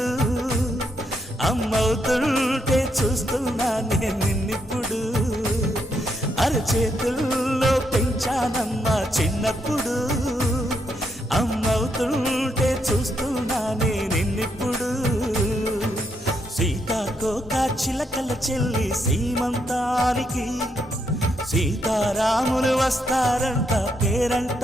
అమ్మవుతుంటే చూస్తున్నా నేను నిన్నిప్పుడు. అరచేతుల్లో పెంచానమ్మా చిన్నప్పుడు, అమ్మవుతుంటే చూస్తున్నా నేను నిన్నిప్పుడు. సీతాకోక చిలకల చెల్లి సీమంతానికి, సీతారాములు వస్తారంట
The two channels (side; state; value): both; normal; correlation 0.78